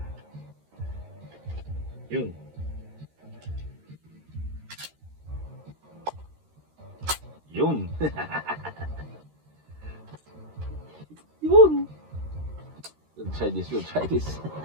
Yun. Yun. Yun. We'll try this. We'll try this.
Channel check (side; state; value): left; late; 13 ms